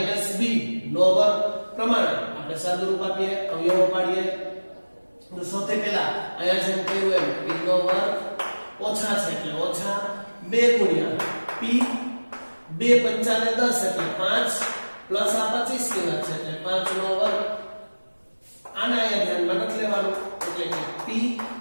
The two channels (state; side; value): inverted; both; correlation -1.00